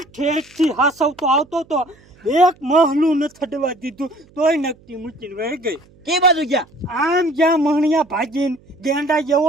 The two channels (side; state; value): right; noise; hum, 28 dB below the sound